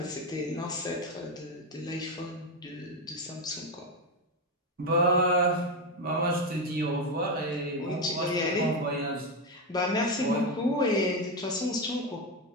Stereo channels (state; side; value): normal; both; correlation 0.11